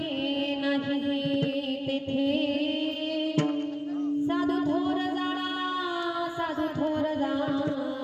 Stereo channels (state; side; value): identical; both; correlation 1.00